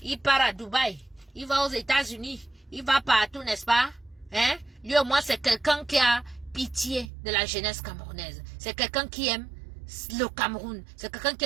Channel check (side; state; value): left; drops out; at 7.1 s